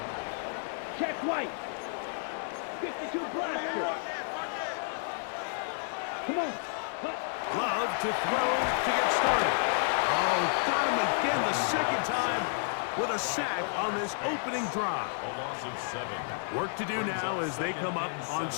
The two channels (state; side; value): silent; right; 57 dB below the other